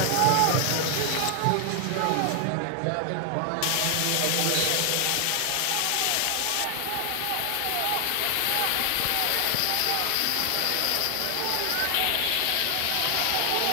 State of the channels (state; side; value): different; both; correlation 0.00